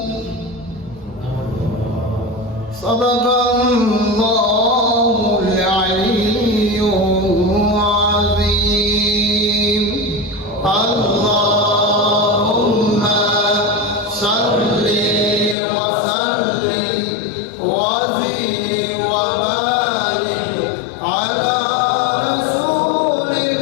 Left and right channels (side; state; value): right; drops out; at 15.6 s